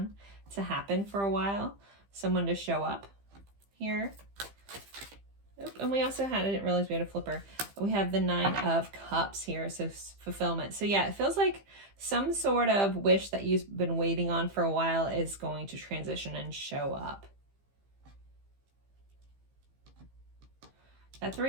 to happen for a while. Someone to show up here. Oop, and we also had, I didn't realize we had a flipper. We have the 9 of Cups here, so fulfillment. So yeah, it feels like some sort of wish that you've been waiting on for a while is going to transition and show up. That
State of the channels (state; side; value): late; left; 15 ms